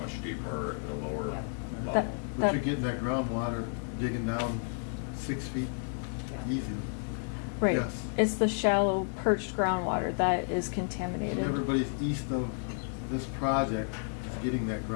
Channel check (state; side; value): silent; right; 57 dB below the other